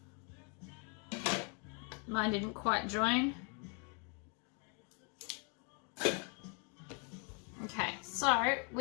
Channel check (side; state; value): right; quieter; 36.3 dB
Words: Mine didn't quite join. Okay, so